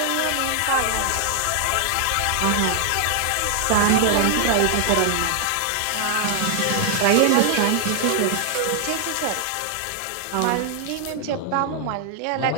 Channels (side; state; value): both; different; correlation 0.00